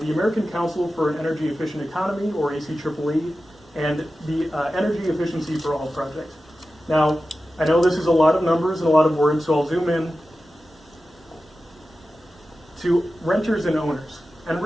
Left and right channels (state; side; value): normal; both; correlation 0.94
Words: American Council for an Energy Efficient Economy, or ACEEE, and the Energy Efficiency for All project. Now, I know this is a lot of numbers and a lot of words, so I'll zoom in to renters and owners. And